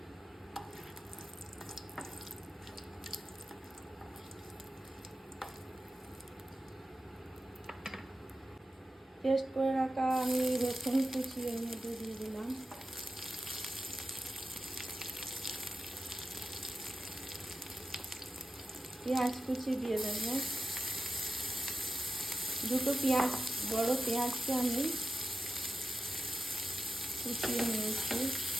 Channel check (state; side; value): normal; both; correlation 0.91